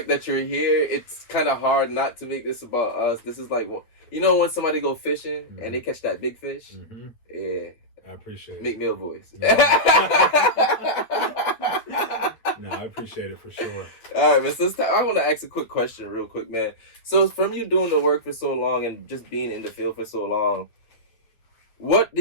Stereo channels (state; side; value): late; right; 8.8 ms